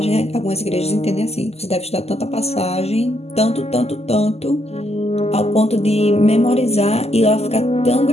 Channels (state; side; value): late; right; 0.30 ms